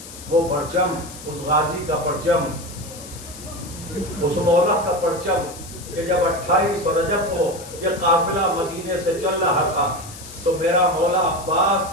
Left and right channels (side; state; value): left; noise; hiss, 15 dB below the sound